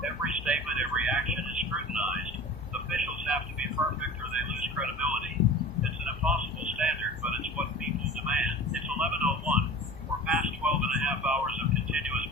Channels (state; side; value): normal; both; correlation 0.37